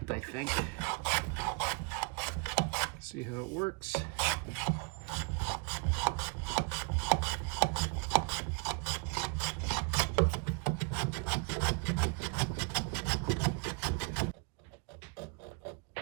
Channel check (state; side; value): quieter; left; 33.2 dB